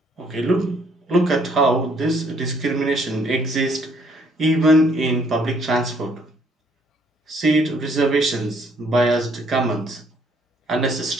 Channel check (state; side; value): normal; both; correlation 0.65